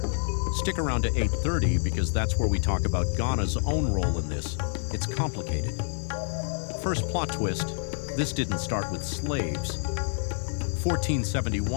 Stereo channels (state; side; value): silent; right; digital silence